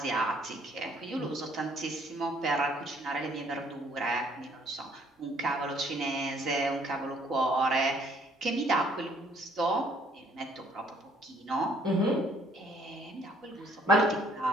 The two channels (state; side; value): normal; both; correlation 0.62